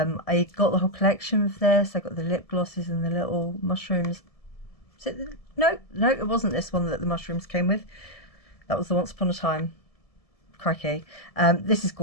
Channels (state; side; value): late; right; 1.7 ms